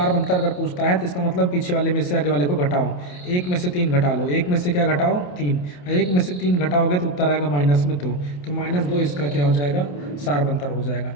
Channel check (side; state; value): right; late; 28 ms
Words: अगर पूछता है तो इसका मतलब पीछे वाले में से आगे वाले को घटाओ, 1 में से 3 घटा लो, 1 में से क्या घटाओ? 3, 1 में से 3 घटाओगे तो उत्तर आएगा माइनस में 2, तो -2 इसका क्या हो जाएगा? सारबंतर हो जाएगा।